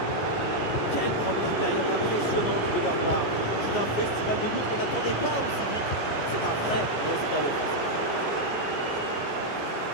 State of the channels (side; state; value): right; late; 14 ms